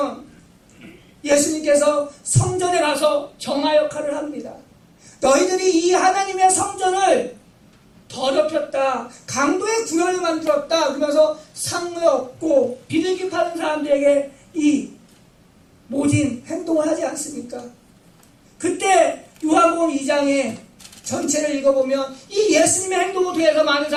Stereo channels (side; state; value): both; identical; correlation 1.00